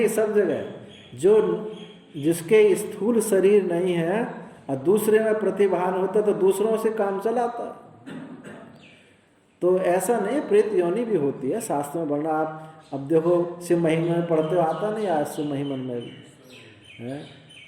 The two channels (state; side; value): identical; both; correlation 1.00